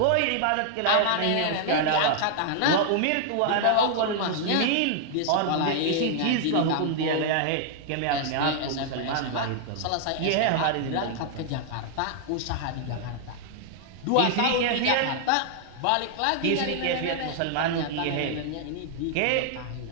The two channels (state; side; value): different; both; correlation -0.01